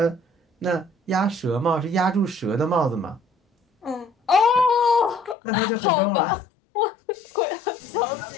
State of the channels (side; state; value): right; drops out; at 5.4 s